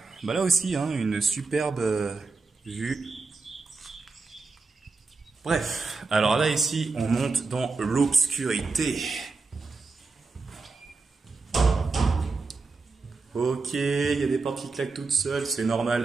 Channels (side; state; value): left; quieter; 4.2 dB